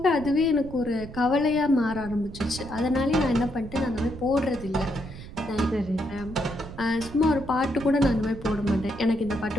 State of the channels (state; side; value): noise; right; rumble, 13 dB below the sound